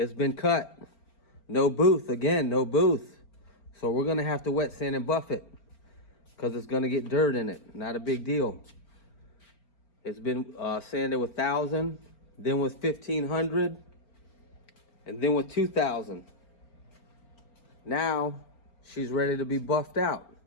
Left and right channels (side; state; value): right; late; 4.4 ms